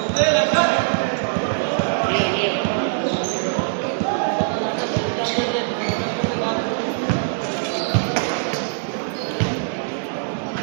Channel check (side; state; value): left; silent; digital silence